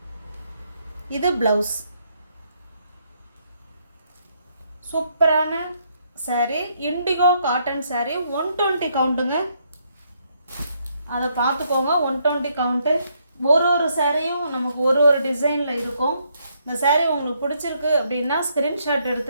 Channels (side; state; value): both; inverted; correlation -0.73